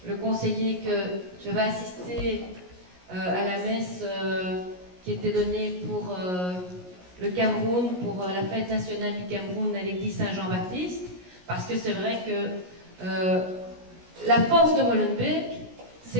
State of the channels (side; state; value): left; late; 17 ms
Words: le conseiller que je vais assister à la messe qui était donnée pour le Cameroun, pour la fête nationale du Cameroun à l'église Saint-Jean-Baptiste, parce que c'est vrai que la force de Molenbeek,